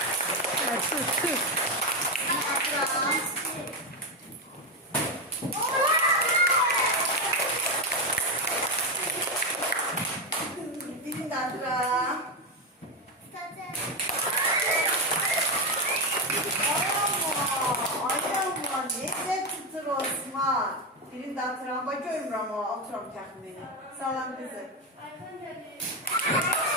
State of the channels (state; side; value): normal; both; correlation 0.09